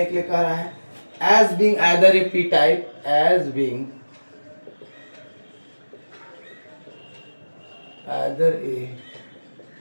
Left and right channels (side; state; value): both; inverted; correlation -1.00